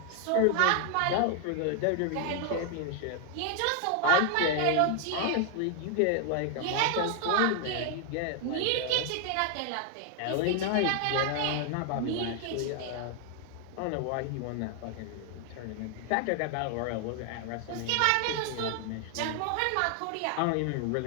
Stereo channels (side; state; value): both; different; correlation 0.00